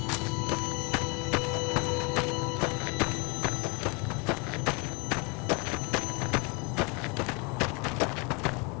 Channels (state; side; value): quieter; right; 30.7 dB